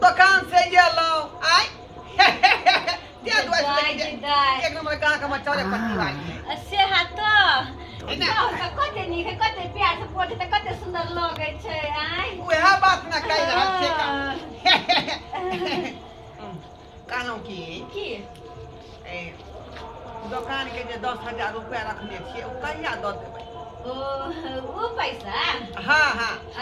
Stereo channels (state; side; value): identical; both; correlation 1.00